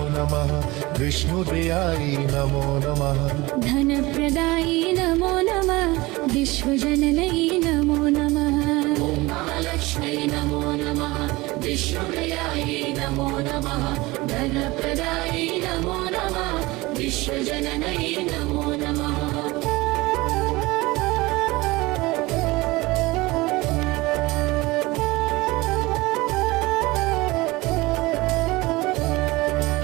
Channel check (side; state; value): left; quieter; 21.5 dB